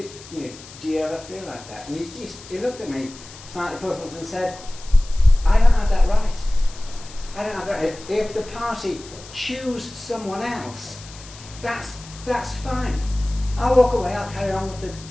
do you ever feel like that? And he looked at me slightly puzzled and said, I don't have that right. I don't have that right. If the party choose someone else, that's fine. I'll walk away, I'll carry on with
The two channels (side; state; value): left; noise; hiss, 18 dB below the sound